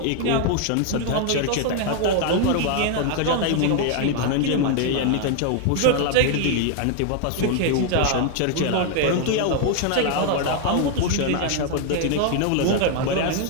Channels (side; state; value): both; different; correlation 0.00